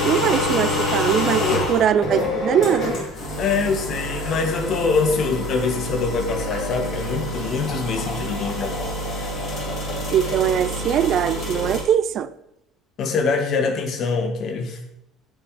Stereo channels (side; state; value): both; normal; correlation 0.46